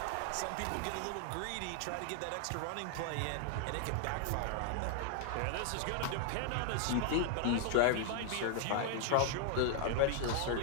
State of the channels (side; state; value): both; different; correlation 0.00